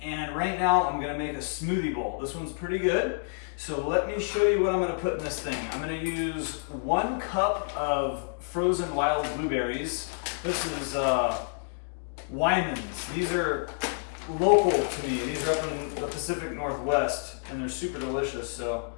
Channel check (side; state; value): right; silent; digital silence